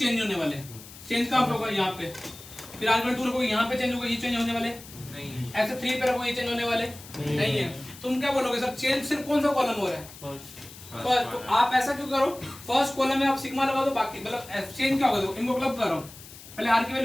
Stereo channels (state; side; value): noise; left; hiss, 17 dB below the sound